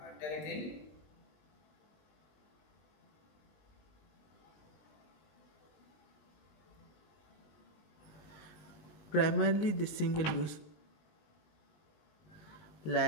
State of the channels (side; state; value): right; late; 19 ms